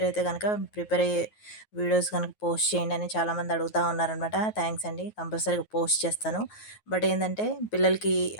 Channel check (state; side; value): late; right; 9.4 ms